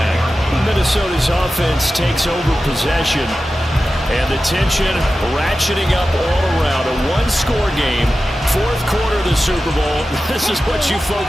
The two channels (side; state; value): both; normal; correlation 0.93